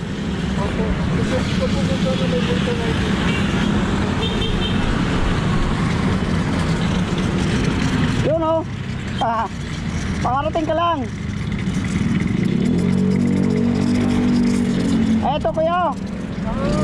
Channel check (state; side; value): identical; both; correlation 1.00